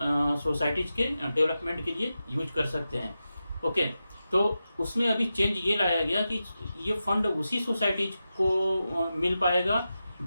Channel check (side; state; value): both; inverted; correlation -0.91